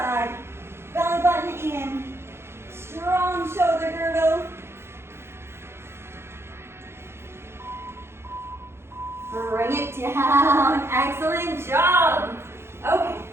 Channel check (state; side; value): late; left; 0.12 ms